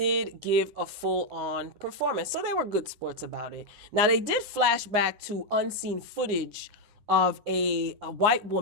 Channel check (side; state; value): left; late; 9.5 ms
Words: give a full-on performance. So they were good sports about it. Now, they did flash back to unseen footage of a white